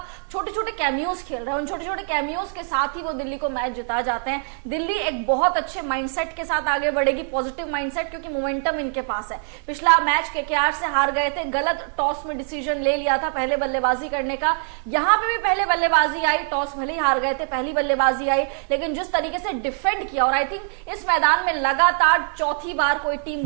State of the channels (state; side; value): silent; left; 57 dB below the other